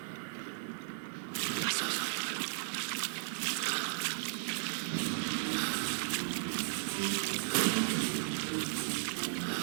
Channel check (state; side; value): silent; left; digital silence